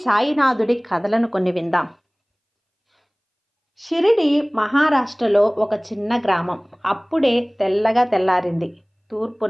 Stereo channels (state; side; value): identical; both; correlation 1.00